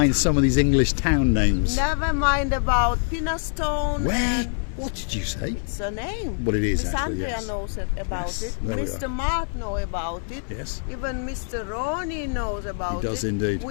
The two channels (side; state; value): right; silent; digital silence